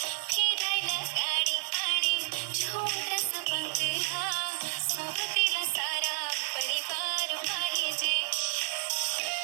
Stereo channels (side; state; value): left; silent; digital silence